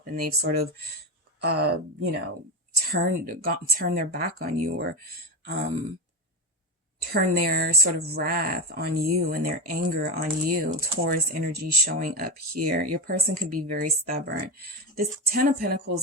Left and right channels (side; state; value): both; normal; correlation 0.15